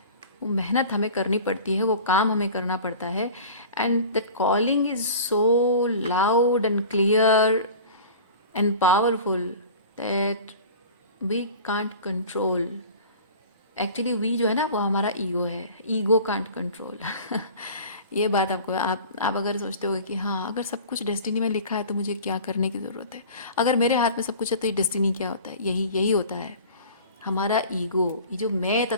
वो मेहनत हमें करनी पड़ती है, वो काम हमें करना पड़ता है। And that calling is so loud and clear and powerful that we can't control. Actually we जो है ना वो हमारा ईगो है, ईगो कांट कंट्रोल। ये बात आपको, आप अगर सोचते हो कि हाँ अगर सब कुछ डेस्टिनी में लिखा है तो मुझे क्या करने की ज़रूरत है, अगर मेरे हाथ में सब कुछ है तो ये डेस्टिनी क्या होता है, यही होता है हमारा ईगो। ये जो मैं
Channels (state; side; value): inverted; both; correlation -0.40